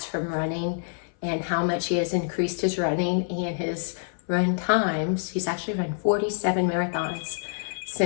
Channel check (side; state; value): right; silent; 58 dB below the other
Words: from running and how much he has increased his running and his run times. He's actually run 47 marathons